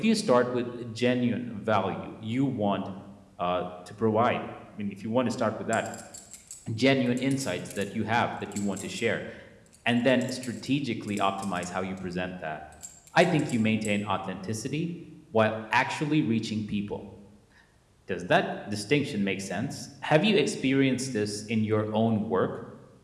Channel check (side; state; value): both; identical; correlation 1.00